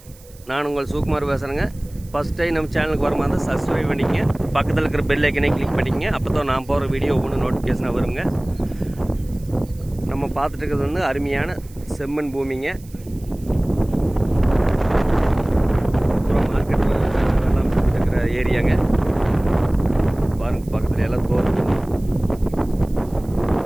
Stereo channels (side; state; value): right; noise; hiss, 25 dB below the sound